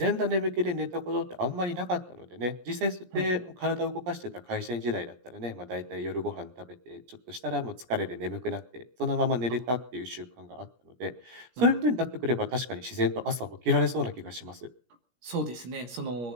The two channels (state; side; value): late; left; 17 ms